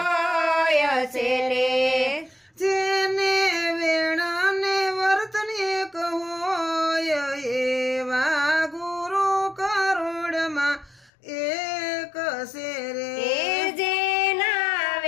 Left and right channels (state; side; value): drops out; right; at 11.1 s